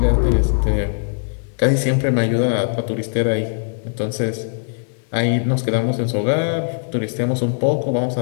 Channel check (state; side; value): silent; right; 66 dB below the other